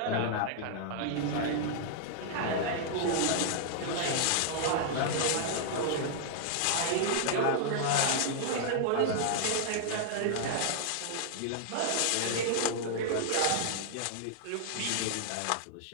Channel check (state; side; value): different; both; correlation -0.01